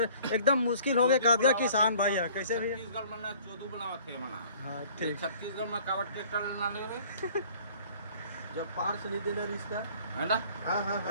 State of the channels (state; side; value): inverted; both; correlation -0.53